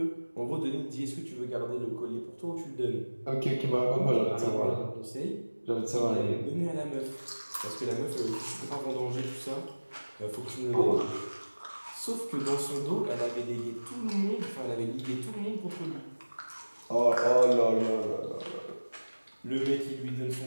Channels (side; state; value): both; inverted; correlation -1.00